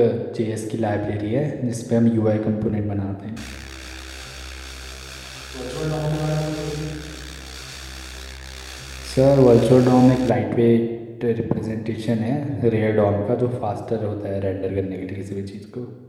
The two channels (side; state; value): both; identical; correlation 1.00